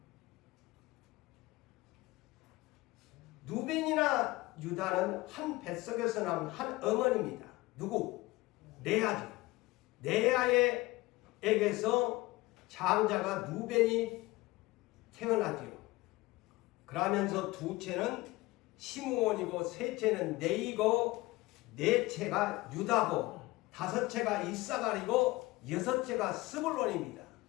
누벤이나 유다는 한 뱃속에서 나온 한 어머니입니다. 누구? 레아죠. 레아에게서 장자가 누벤이 태어나지요. 그러면서 둘째는 시므온이고 셋째는 네이고 넷째가 유다고 다섯째가 이사갈이고 여섯째가 스불론입니다.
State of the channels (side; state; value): right; quieter; 20.6 dB